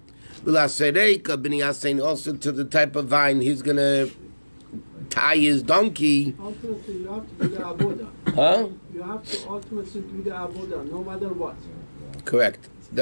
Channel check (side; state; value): both; inverted; correlation -1.00